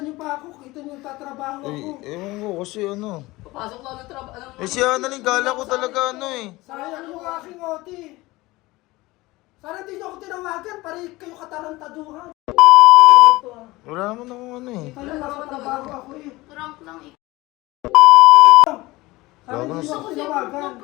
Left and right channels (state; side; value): quieter; right; 20.3 dB